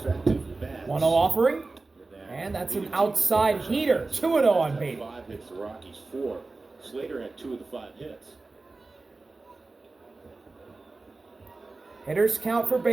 bats. 1-0 offering. And that's an outside heater. 2-0 on Beatty. 5 hits, the Rockies 4. Slater had 2 of the 5 hits. Hitters count for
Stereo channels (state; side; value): quieter; left; 3.5 dB